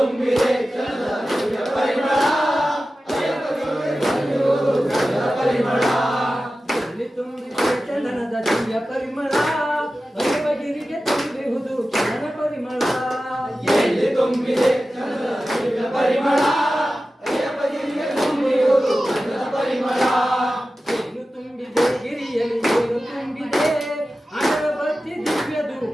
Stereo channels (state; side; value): normal; both; correlation 0.94